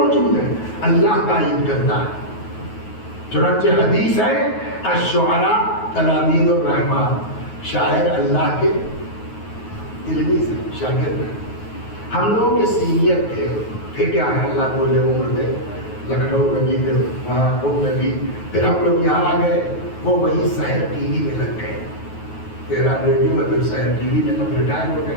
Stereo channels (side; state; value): right; late; 9.3 ms